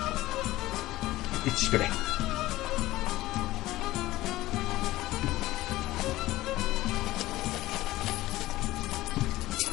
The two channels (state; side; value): quieter; right; 17.0 dB